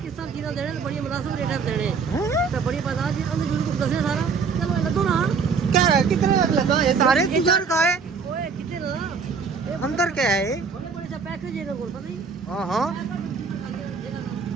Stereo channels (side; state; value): left; quieter; 5.3 dB